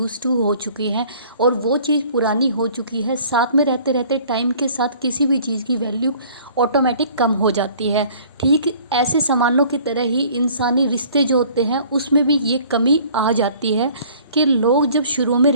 टू हो चुके हैं और वो चीज़ पुरानी हो चुकी है। साथ में रहते रहते टाइम के साथ किसी भी चीज़ की वैल्यू ऑटोमेटिक कम हो जाती है। ठीक ऐसे सामानों की तरह ही इंसानी रिश्ते जो होते हैं उसमें भी ये कमी आ जाती है कि लोग जब शुरू में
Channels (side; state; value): both; inverted; correlation -0.52